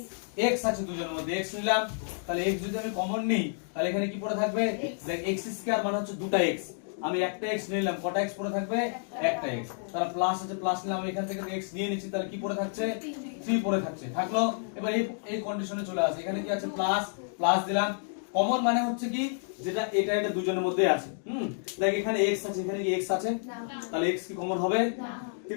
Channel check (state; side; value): silent; right; digital silence